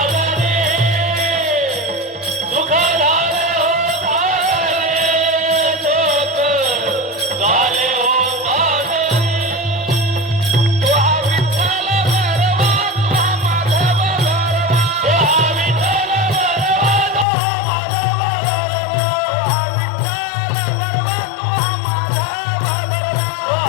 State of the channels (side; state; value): right; drops out; at 17.2 s